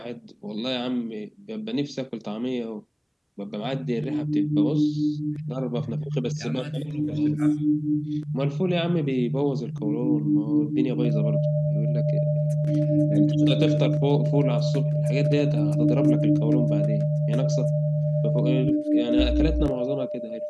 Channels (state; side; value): identical; both; correlation 1.00